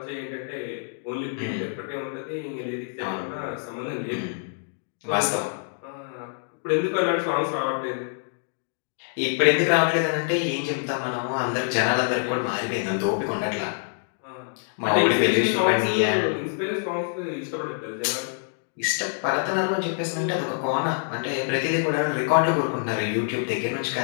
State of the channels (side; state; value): right; silent; digital silence